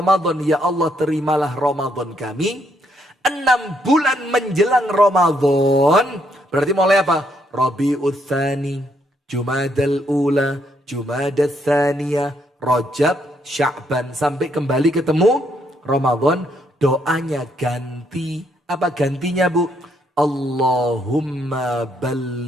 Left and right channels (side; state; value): both; normal; correlation 0.73